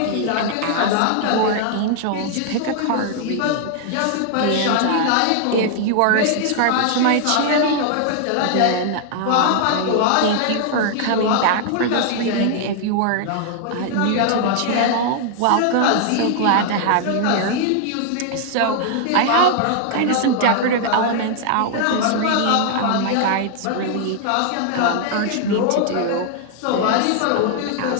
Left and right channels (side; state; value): both; different; correlation 0.00